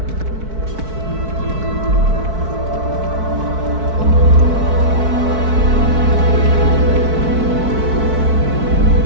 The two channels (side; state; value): left; late; 4.6 ms